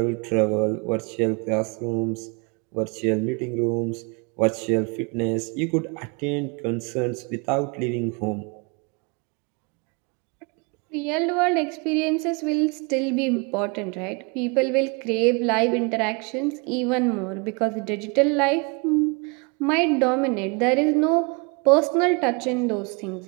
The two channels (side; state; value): left; quieter; 31.5 dB